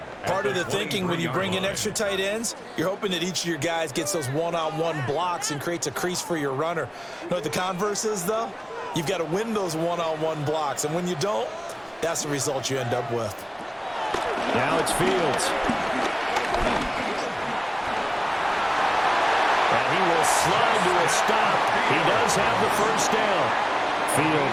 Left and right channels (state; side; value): identical; both; correlation 1.00